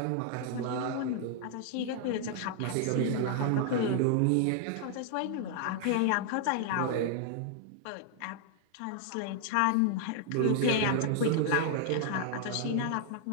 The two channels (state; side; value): different; both; correlation 0.00